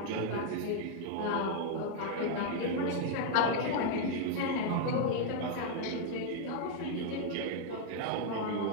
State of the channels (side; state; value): both; different; correlation 0.00